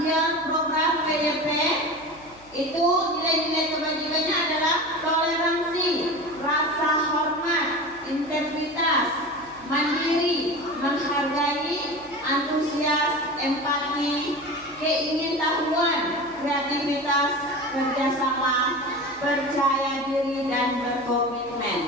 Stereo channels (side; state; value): left; noise; hum, 25 dB below the sound